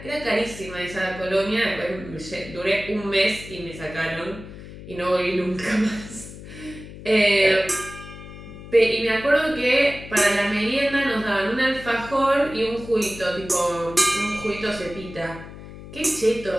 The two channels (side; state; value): left; noise; hum, 14 dB below the sound